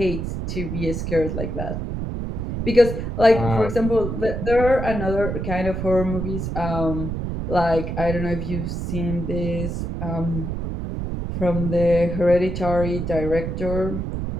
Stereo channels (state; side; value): noise; right; rumble, 4 dB below the sound